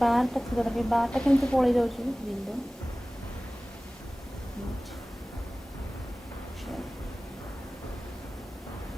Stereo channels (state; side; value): normal; both; correlation 0.98